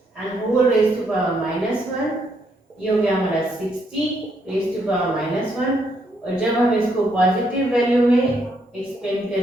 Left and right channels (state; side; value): normal; both; correlation 0.74